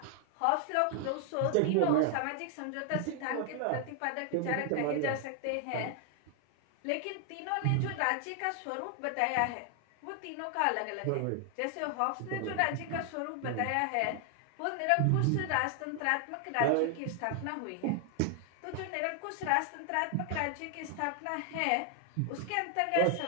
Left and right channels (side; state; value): both; different; correlation 0.00